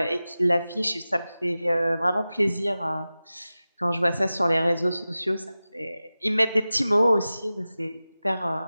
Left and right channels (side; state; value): both; inverted; correlation -0.96